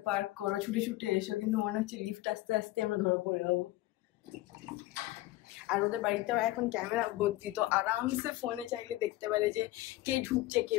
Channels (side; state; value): right; quieter; 17.5 dB